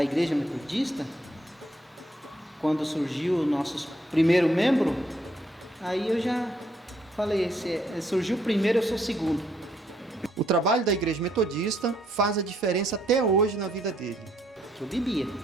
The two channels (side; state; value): both; normal; correlation 0.71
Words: Igreja Metodista, quando surgiu o nosso primeiro membro, aí eu já falei, se surgiu o primeiro, eu sou o segundo. O trabalho da Igreja Metodista faz a diferença até hoje na vida dele. Eu bebia,